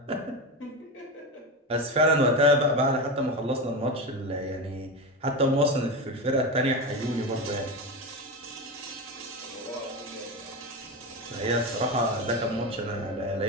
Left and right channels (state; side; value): normal; both; correlation 0.19